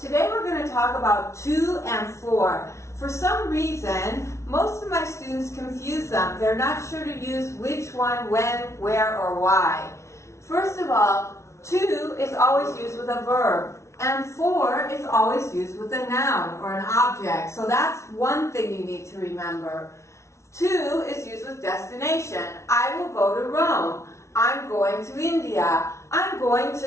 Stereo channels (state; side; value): late; right; 0.13 ms